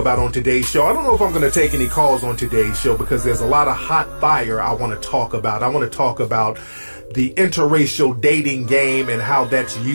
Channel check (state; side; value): inverted; both; correlation -1.00